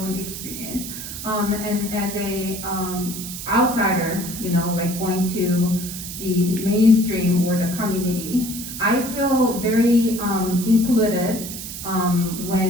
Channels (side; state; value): right; noise; hiss, 8 dB below the sound